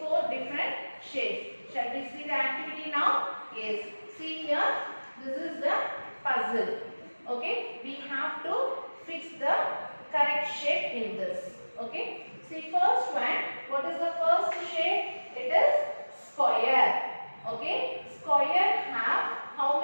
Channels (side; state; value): both; inverted; correlation -1.00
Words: different shapes. Shall we see the activity now? Yes. See here, this is the puzzle. Okay, we have to fix the correct shape in this. Okay, see first one, what is the first shape? It is square. Okay, square have how